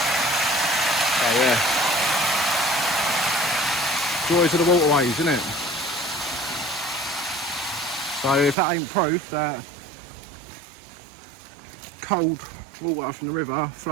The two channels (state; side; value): drops out; left; at 8.6 s